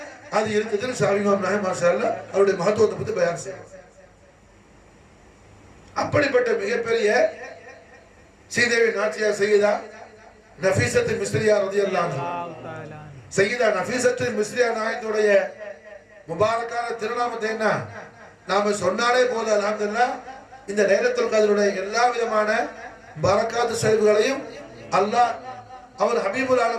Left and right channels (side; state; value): both; identical; correlation 1.00